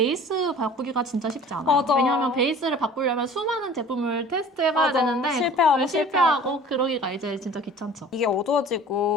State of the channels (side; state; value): both; normal; correlation 0.45